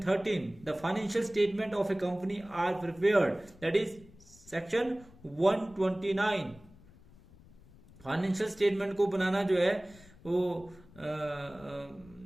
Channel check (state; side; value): noise; left; rumble, 23 dB below the sound